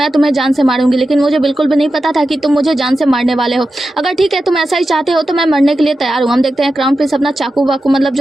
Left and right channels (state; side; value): normal; both; correlation 0.91